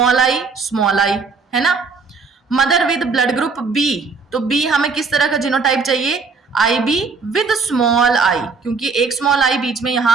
आई, है ना. Mother with blood group B, तो बी हमें किस तरह का जीनोटाइप चाहिए, IB विद स्मॉल आई, क्योंकि एक स्मॉल आई बीच में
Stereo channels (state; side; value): quieter; left; 4.6 dB